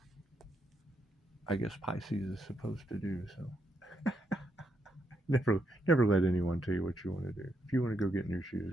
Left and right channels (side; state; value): both; normal; correlation 0.79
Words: I guess Pisces is supposed to do. So never let anyone tell you what you want to do. If you want to go get new